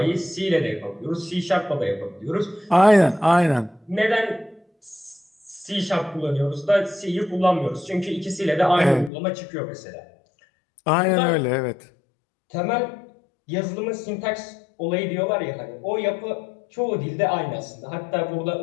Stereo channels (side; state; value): right; drops out; at 9.1 s